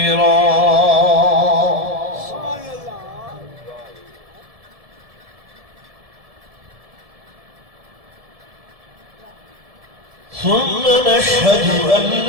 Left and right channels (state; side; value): late; left; 1.7 ms